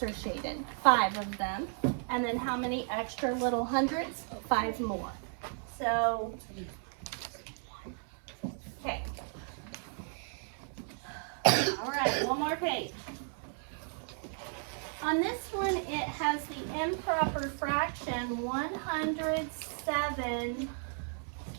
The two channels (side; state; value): left; silent; 55 dB below the other